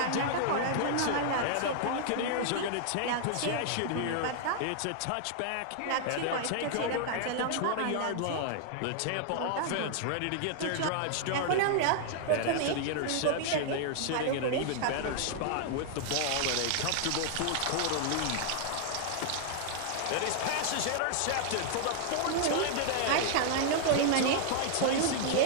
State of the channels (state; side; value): different; both; correlation -0.01